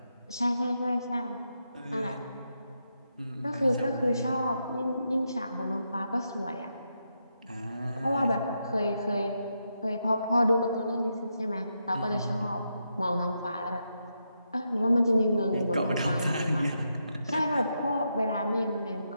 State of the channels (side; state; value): both; inverted; correlation -0.83